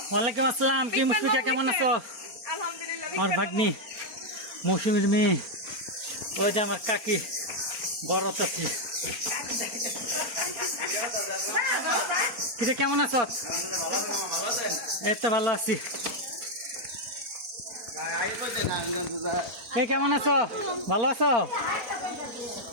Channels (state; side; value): late; left; 4.3 ms